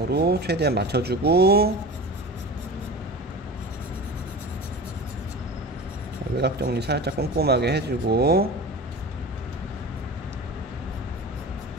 최대한 맞춰주고 외곽 정리 살짝 꼼꼼하게 해주고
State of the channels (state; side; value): normal; both; correlation 0.32